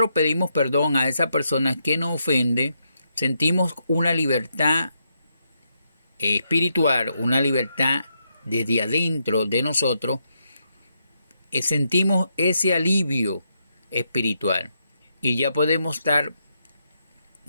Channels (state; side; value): inverted; both; correlation -0.80